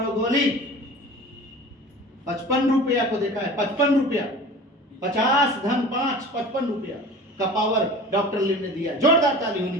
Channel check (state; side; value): normal; both; correlation 0.39